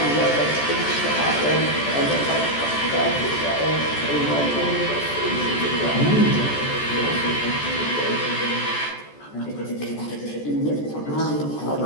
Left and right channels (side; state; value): right; late; 14 ms